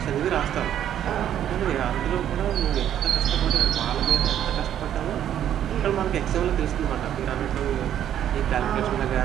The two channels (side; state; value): left; quieter; 10.5 dB